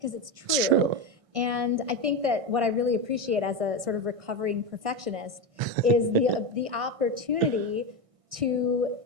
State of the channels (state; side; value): late; left; 1.6 ms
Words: it's true. It's true. And I think that what I really appreciate as a sort of recovering perfectionist is the opportunity to